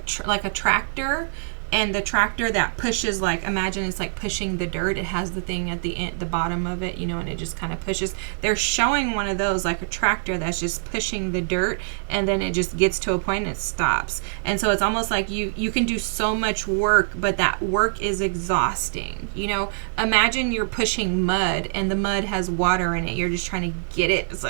like a tractor. And the tractor that pushes, like, imagine it's like pushing the dirt. It has the thing at the end, the bottom of it, you know, and it just kind of pushes. They're showing one of those, like a tractor that's just pushing the dirt, and then it just gets to a point and it stops. And so it's almost like you can do so much work, but that work is exhausting. You know, imagine you're pushing mud and the mud has water in it. You're just trying to get it. It's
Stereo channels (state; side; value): silent; left; digital silence